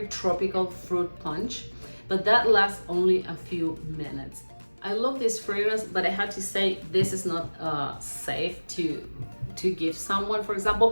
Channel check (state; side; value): inverted; both; correlation -1.00